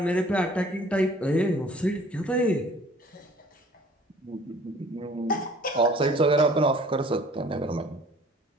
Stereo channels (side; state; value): both; normal; correlation 0.52